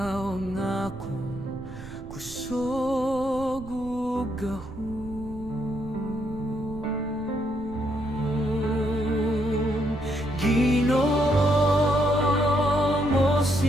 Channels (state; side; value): noise; right; rumble, 15 dB below the sound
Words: ang akong kusog ug gahom. Ginoo,